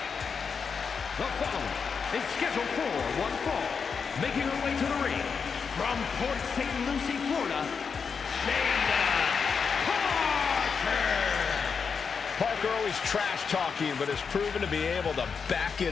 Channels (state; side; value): quieter; right; 5.9 dB